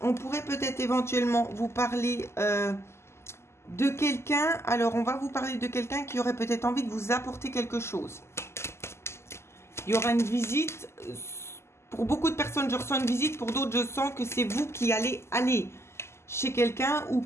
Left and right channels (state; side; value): late; right; 0.13 ms